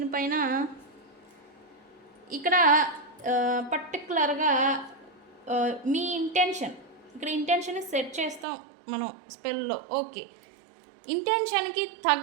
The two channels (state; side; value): drops out; left; at 8.5 s